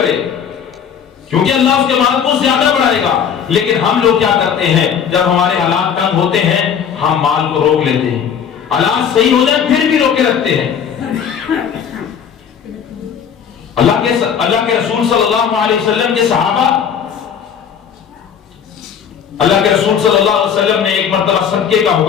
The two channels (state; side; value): quieter; right; 7.7 dB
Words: کیونکہ اللہ اس کے مال کو زیادہ بڑھائے گا۔ لیکن ہم لوگ کیا کرتے ہیں، جب ہمارے حالات تنگ ہوتے ہیں ہم مال کو روک لیتے ہیں، حالات صحیح ہو جائیں پھر بھی روکے رکھتے ہیں۔ اللہ کے رسول صلی اللہ علیہ وسلم کے صحابہ، اللہ کے رسول صلی اللہ علیہ وسلم نے ایک مرتبہ صدقے کا